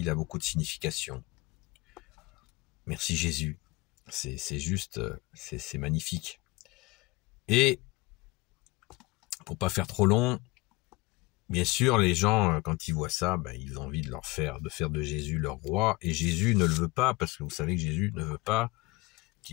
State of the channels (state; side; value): quieter; right; 22.9 dB